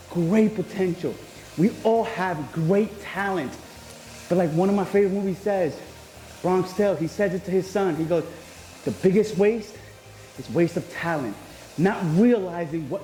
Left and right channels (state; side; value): identical; both; correlation 1.00